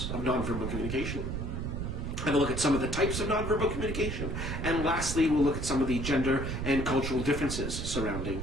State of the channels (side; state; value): right; noise; rumble, 3 dB below the sound